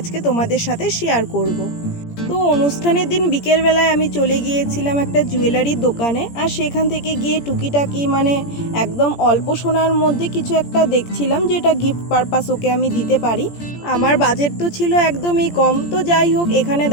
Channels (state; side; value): late; right; 17 ms